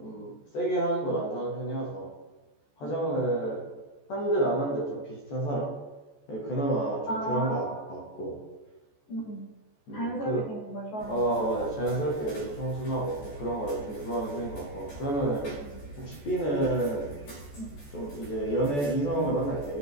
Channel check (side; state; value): right; late; 14 ms